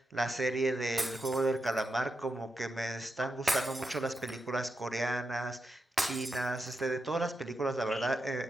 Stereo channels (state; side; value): normal; both; correlation 0.87